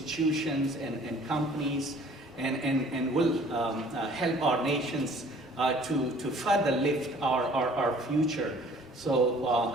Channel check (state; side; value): normal; both; correlation 0.53